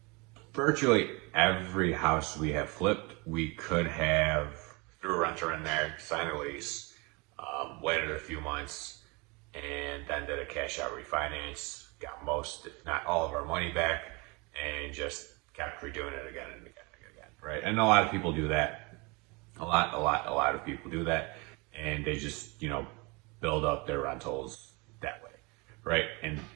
virtually every house we have flipped, we could have threw a renter in there, signed a lease, waited a few months, and then did a cash out refinance, got most, if not all of our money back, and just kept redoing it again and again and again, right? And a lot of people do that. A lot of people do that, and they just, build up their rentals that way, right? And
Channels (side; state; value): left; quieter; 28.0 dB